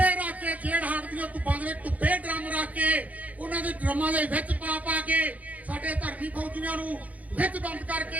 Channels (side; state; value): left; late; 0.073 ms